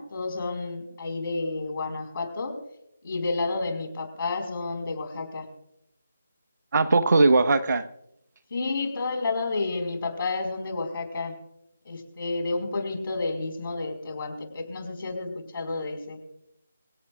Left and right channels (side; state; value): both; inverted; correlation -0.83